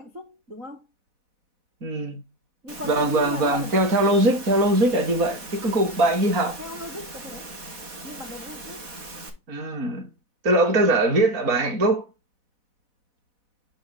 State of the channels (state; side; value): late; left; 4.2 ms